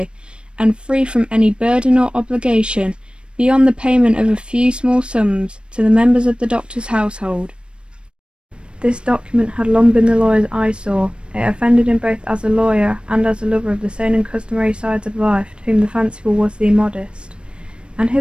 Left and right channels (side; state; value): left; late; 0.056 ms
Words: and free from any burden or obligation beyond the payment of a few small sums to the members of the doctor's household. This document had long been the lawyer's eyesore. It offended him both as a lawyer and as a lover of the sane and customary sides of life, to whom the fanciful was the immodest. And